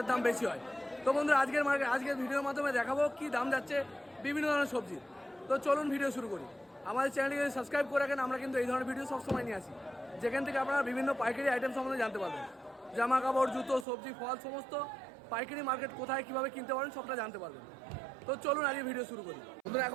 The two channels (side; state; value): left; drops out; at 13.9 s